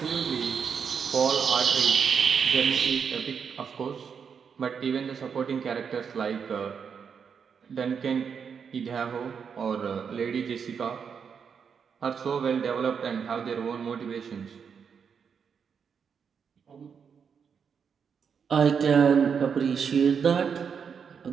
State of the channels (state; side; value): quieter; left; 6.7 dB